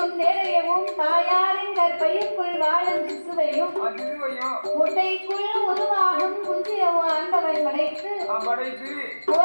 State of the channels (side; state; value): both; inverted; correlation -1.00